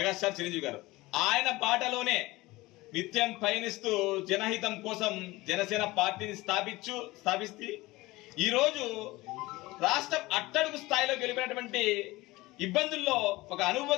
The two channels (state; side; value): quieter; right; 20.2 dB